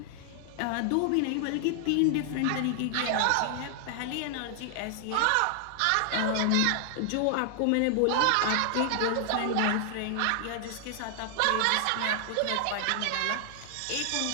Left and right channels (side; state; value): both; different; correlation 0.00